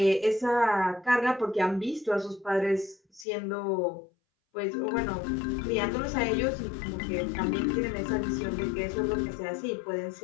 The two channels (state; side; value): drops out; right; at 3.2 s